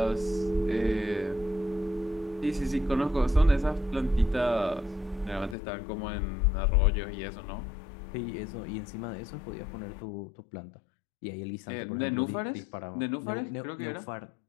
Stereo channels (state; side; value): drops out; right; at 5.6 s